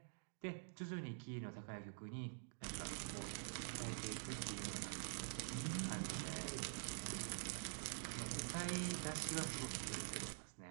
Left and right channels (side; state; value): left; silent; digital silence